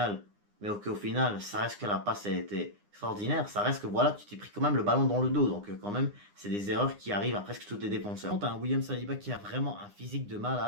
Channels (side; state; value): left; late; 9.8 ms